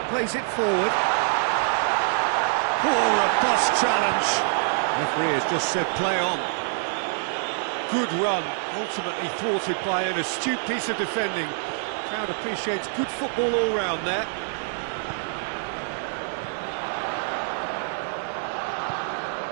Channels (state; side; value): silent; left; digital silence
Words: plays it forward. Oh, robust challenge. Referee has just said play on. Good run, ultimately thwarted by an astute piece of defending. Crowd appreciates good football all round there.